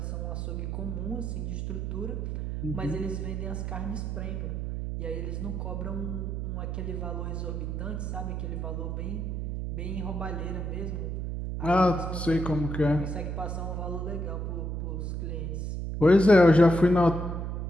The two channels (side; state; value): right; noise; hum, 3 dB below the sound